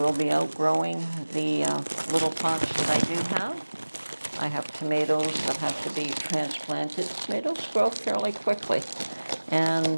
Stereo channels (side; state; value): both; inverted; correlation -1.00